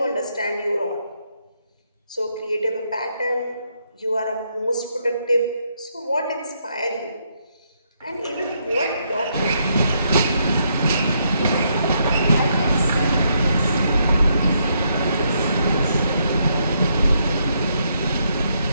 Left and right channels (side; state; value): both; inverted; correlation -0.76